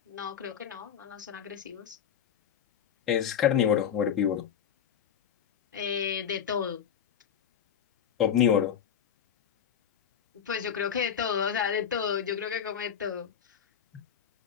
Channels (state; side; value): quieter; right; 8.5 dB